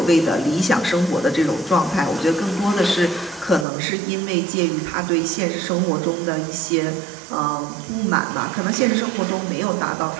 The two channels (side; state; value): left; drops out; at 3.7 s